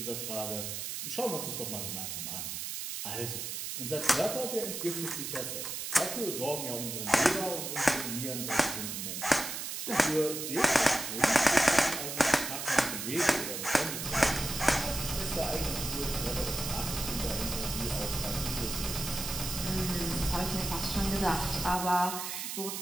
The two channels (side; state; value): right; noise; hiss, 5 dB below the sound